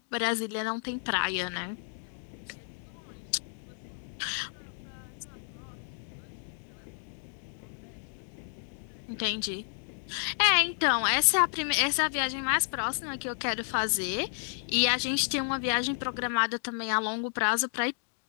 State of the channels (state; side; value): silent; right; digital silence